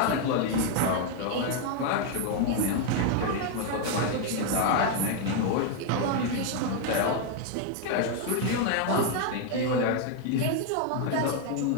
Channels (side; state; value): both; different; correlation 0.00